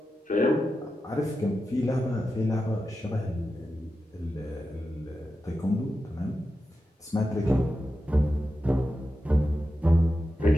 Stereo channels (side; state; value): both; normal; correlation 0.90